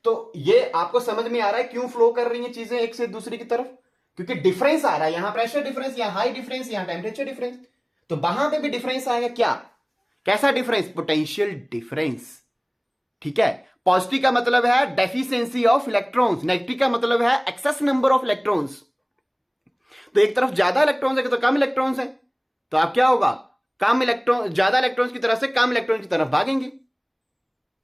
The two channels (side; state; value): both; identical; correlation 1.00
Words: तो ये आपको समझ में आ रहा है क्यों फ्लो कर रही हैं चीजें एक से दूसरी की तरफ, क्योंकि डिफरेंस आ रहा है, यहां प्रेशर डिफरेंस, यहां हाई डिफरेंस, यहां टेम्परेचर डिफरेंस, तो वहां पे भी डिफरेंस आएगा। क्या, कैसा डिफरेंस? पोटेंशियल डिफरेंस, ठीक है। पॉजिटिव का मतलब है डेफिशिएंसी ऑफ इलेक्ट्रॉन्स, नेगेटिव का मतलब है एक्सेस नंबर ऑफ इलेक्ट्रॉन्स। तो एक तरफ ज्यादा इलेक्ट्रॉन्स है तो कम इलेक्ट्रॉन्स है, तो आप क्या होगा, कम इलेक्ट्रॉन, ज्यादा इलेक्ट्रॉन्स की तरफ से कम इलेक्ट्रॉन की तरफ भागेंगे।